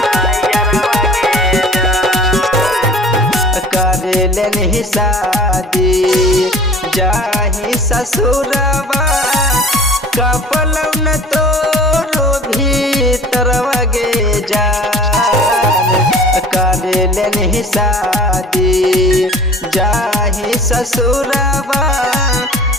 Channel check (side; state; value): both; normal; correlation 0.46